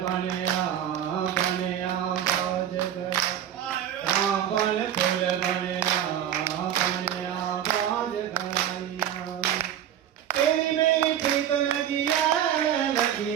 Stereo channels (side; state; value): left; quieter; 10.4 dB